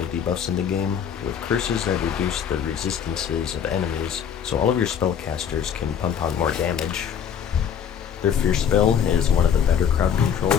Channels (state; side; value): quieter; right; 8.1 dB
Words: debuffs in the game, with curses that reduce the resistances of enemies, so all of your spellcasters can pump out more damage. Their Fierce spell is one of the better crowd